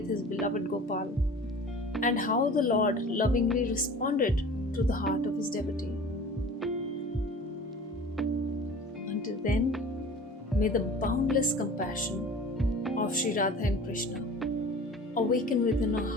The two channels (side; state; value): both; normal; correlation 0.42